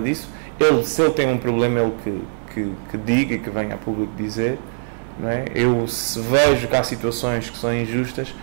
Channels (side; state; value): left; silent; digital silence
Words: Se ele tem um problema, ele que diga, que venha a público dizer, não é? Eu, se vejo que há situações que são injustas,